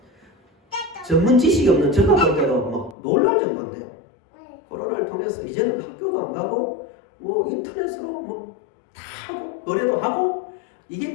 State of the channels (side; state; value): right; drops out; at 3.0 s